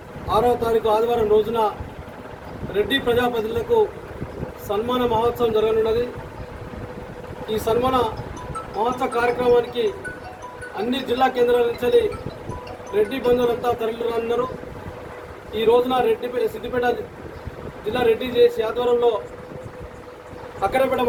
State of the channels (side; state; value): both; identical; correlation 1.00